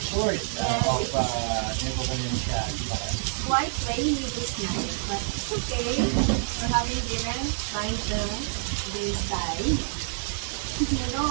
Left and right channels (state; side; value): silent; left; digital silence